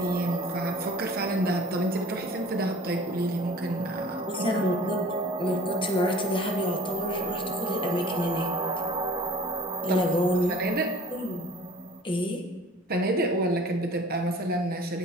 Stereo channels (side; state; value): both; normal; correlation 0.46